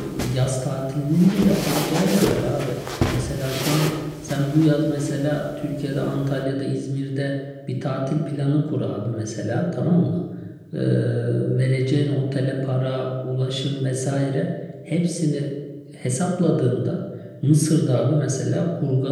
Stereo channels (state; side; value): identical; both; correlation 1.00